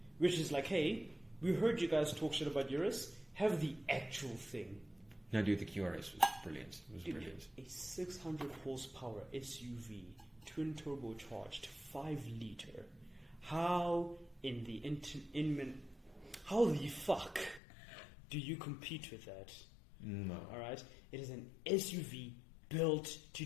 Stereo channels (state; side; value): drops out; right; at 17.6 s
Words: which is like, hey, we heard you guys talk shit about Urus. Have the actual thing. No, dude, the QRS was brilliant. It was brilliant. A 600 horsepower SUV, twin turbocharged, 5 liter. How in the how the fuck do you compete with that? No. All right, it is an SUV built to